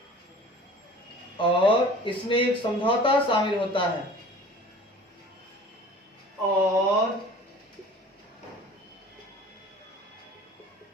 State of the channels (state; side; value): normal; both; correlation 0.44